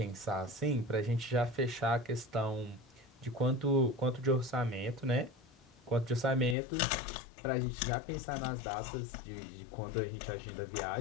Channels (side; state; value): right; drops out; at 6.6 s